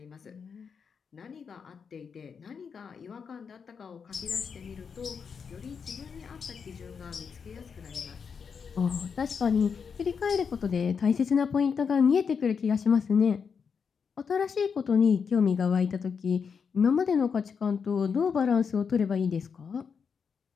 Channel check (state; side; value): quieter; right; 6.2 dB